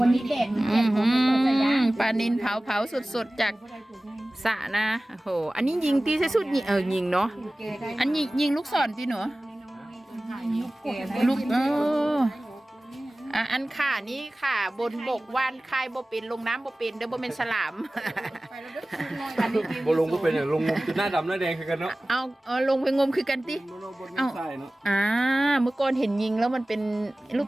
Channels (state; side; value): normal; both; correlation 0.98